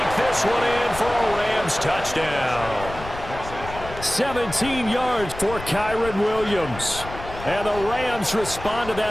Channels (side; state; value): left; noise; rumble, 12 dB below the sound